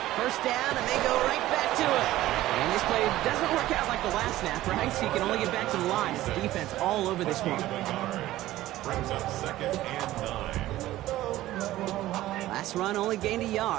1st down, and they go right back to it. And this play doesn't work out like the last snap, right? So you can only get back to the line. It's defense all over this one. Brings up 2nd and 9. Last run only gained a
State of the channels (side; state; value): left; quieter; 15.4 dB